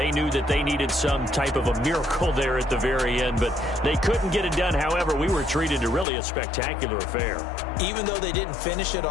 knew that they needed some type of a miracle there at the very end, but they couldn't get it done. However, we were treated to really a spectacular affair. Even though they didn't finish it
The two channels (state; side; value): drops out; right; at 6.1 s